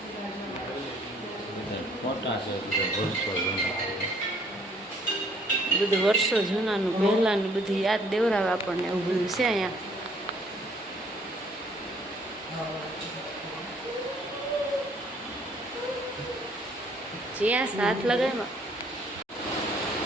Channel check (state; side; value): normal; both; correlation 0.61